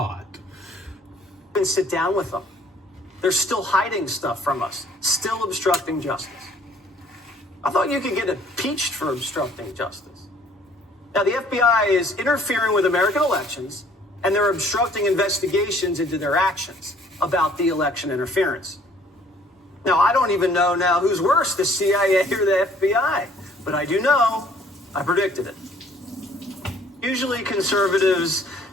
...and sit down with them. They're still hiding stuff from us, still obstructing justice. I thought you could get impeached for obstructing justice. Now, the FBI is interfering with American elections, and they're obstructing investigations into their actions about the election interference. Now, I don't even know now who's worse, the CIA or the FBI, but I do know I predicted it. Usually conservatives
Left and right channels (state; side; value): normal; both; correlation 0.58